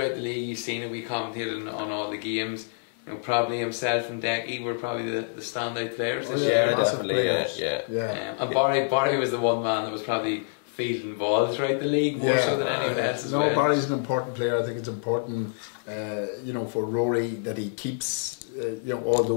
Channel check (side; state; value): right; silent; 60 dB below the other